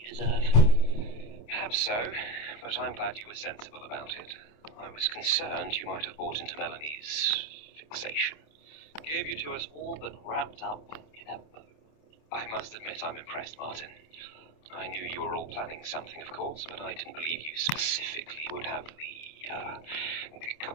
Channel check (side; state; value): right; late; 27 ms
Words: deserve. Perhaps so, but I'm glad you were sensible about it. I was concerned you might have bought into Melanie's fixation. Gave you to us all but wrapped up in a bow. I must admit I'm impressed, Martin. I knew you were all planning something, of course, but I didn't believe you specifically would have the